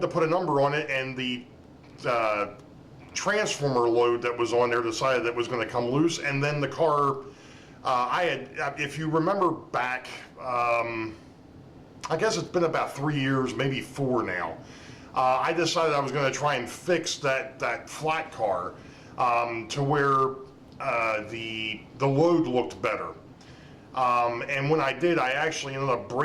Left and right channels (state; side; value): identical; both; correlation 1.00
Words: to put a number on it, and the transformer load that was on there decided that it was going to come loose, and then the car, if you remember back, I guess it's been about 3 years, maybe 4 now. I decided I was going to try and fix that flat car to where the load looked better. And when I did, I actually ended up